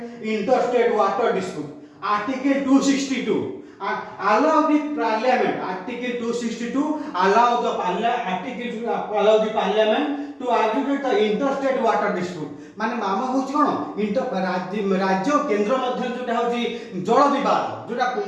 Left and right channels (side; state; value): both; identical; correlation 1.00